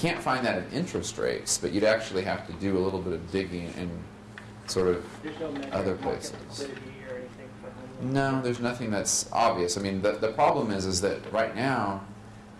find that in interest rates, but you'd actually have to do a little bit of digging in sort of There's no measure other of market places. liquidity or anything for home loans? No, there's nothing that's obvious. I mean, the problem is that right now,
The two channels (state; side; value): identical; both; correlation 1.00